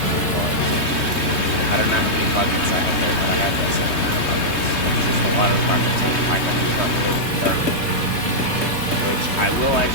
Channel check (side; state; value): right; late; 3.2 ms